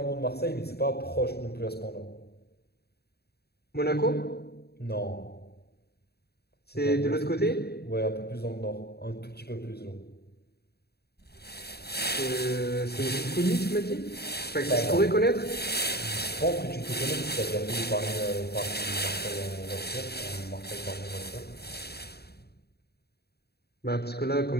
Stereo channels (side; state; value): right; late; 0.47 ms